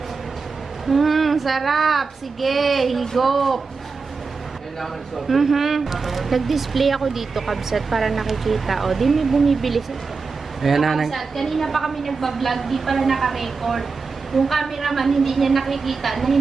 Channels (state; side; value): quieter; left; 4.6 dB